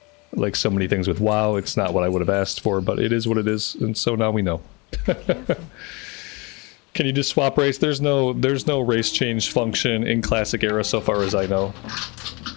Like so many things with WoW, it's not what I would have asked for, but it is what it is, and so now we know. Can you just swap race? There's no race change function in Classic Era so far as I know.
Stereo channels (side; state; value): right; quieter; 27.5 dB